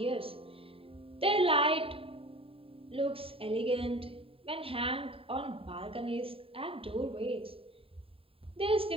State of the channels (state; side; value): late; left; 0.27 ms